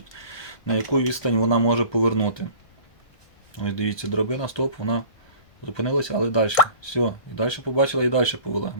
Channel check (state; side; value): late; right; 1.6 ms